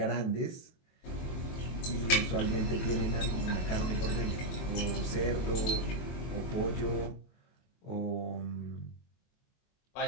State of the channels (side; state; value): right; late; 23 ms